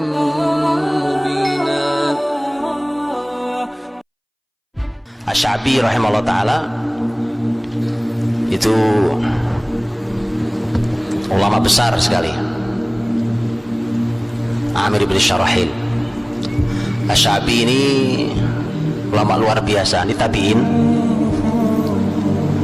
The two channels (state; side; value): identical; both; correlation 1.00